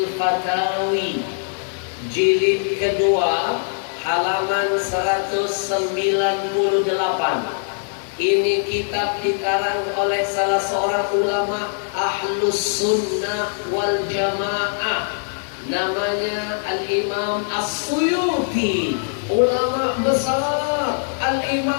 Fatawi, jilid kedua, halaman 198. Ini kitab dikarang oleh salah seorang ulama Ahlus Sunnah wal Jamaah, namanya Al-Imam As-Suyuti, ulama besar.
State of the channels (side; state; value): right; silent; 65 dB below the other